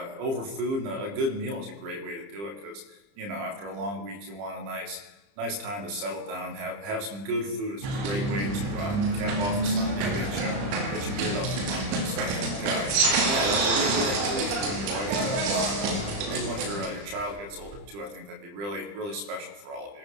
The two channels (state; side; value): late; left; 30 ms